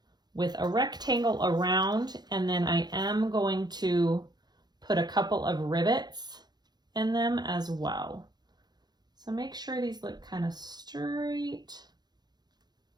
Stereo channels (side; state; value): left; late; 0.20 ms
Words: with a rectangle around, and then I am going to put a couple of rivets in them as well. So make sure these look kind of straight